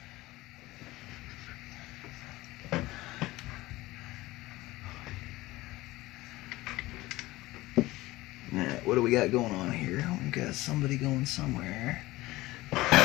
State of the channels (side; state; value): right; quieter; 18.8 dB